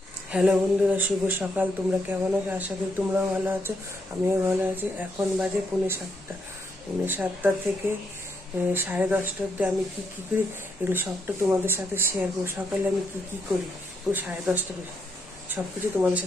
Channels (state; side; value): normal; both; correlation 0.77